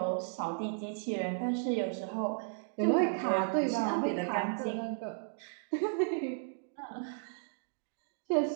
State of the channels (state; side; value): silent; left; digital silence